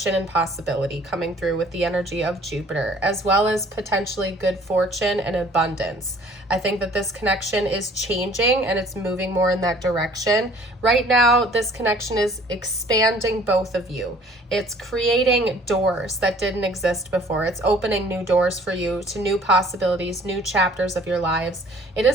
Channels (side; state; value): both; normal; correlation 0.54